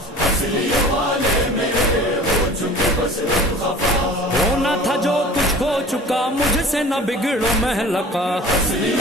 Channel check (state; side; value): normal; both; correlation 0.43